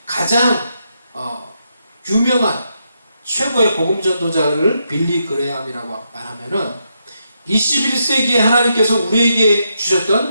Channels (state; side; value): inverted; both; correlation -0.81